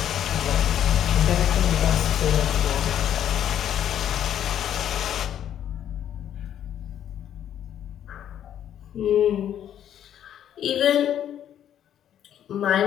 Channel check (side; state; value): right; quieter; 10.3 dB